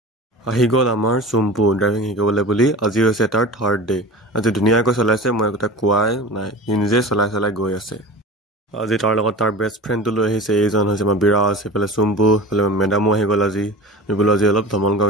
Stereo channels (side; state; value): both; normal; correlation 0.35